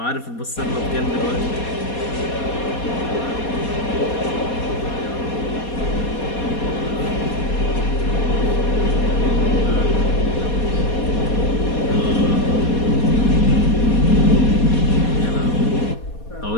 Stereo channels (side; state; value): right; late; 4.2 ms